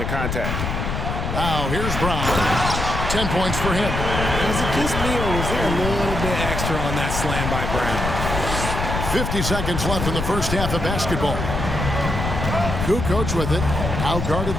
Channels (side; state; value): left; noise; rumble, 3 dB below the sound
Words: contact. Now here's Brown. 10 points for him. Was it just me, or was there a little bit extra on that slam by Brown? 50 seconds left in the first half of basketball. Kukoc with it. Now guarded